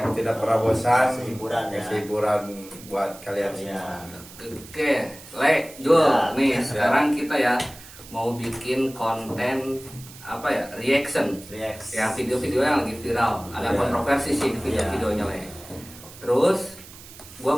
tidak pernah bosan. Kasih hiburan ya. Kasih hiburan buat kalian Iya. semua. Oke, Le, Jul, Ya, nih ya. sekarang kita ya mau bikin konten apa ya, reaction. React. Ya video-video yang lagi viral, agak Ya. kontroversi sih video-videonya Le. Terus, gua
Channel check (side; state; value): right; noise; hiss, 18 dB below the sound